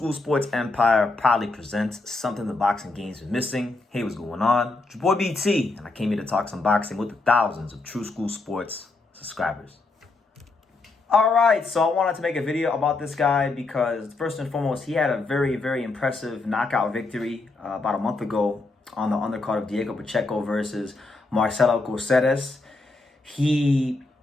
Sports Empire proudly presents something the boxing game's been missing. Hey, what's going on? It's your boy BT, and I came here to talk some boxing with the thousands of True School Sports subscribers. Alright, so I wanted to make a video about this guy because first and foremost, he had a very, very impressive knockout victory about a month ago on the undercard of Diego Pacheco versus Marcelo Coceres. He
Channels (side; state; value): right; quieter; 3.4 dB